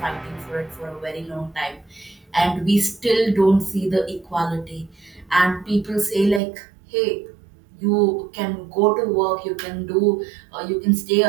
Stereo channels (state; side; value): drops out; left; at 6.4 s